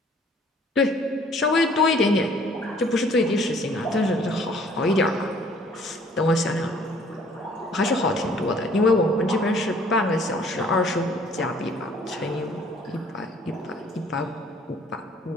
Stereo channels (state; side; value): normal; both; correlation 0.58